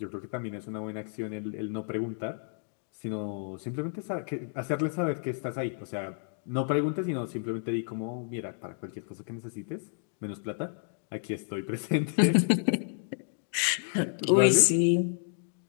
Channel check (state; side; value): silent; right; 57 dB below the other